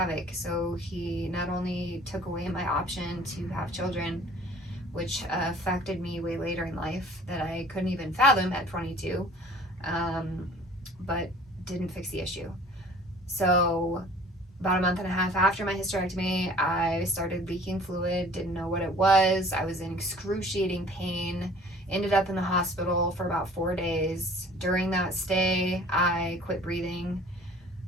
So he not only took away my option to have children, which affected me way later in life that I couldn't even fathom at 22, but didn't fix the issue. So about a month and a half after my hysterectomy, I started leaking fluid, didn't know what it was. I was in excruciating pain, ended up in the hospital for about 4 days. During that stay, I quit breathing.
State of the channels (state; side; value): normal; both; correlation 0.50